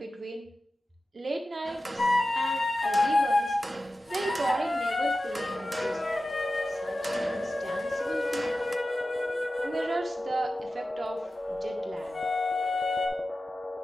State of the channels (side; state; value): both; normal; correlation 0.94